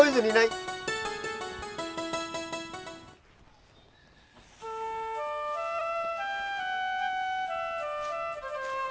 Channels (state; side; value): identical; both; correlation 1.00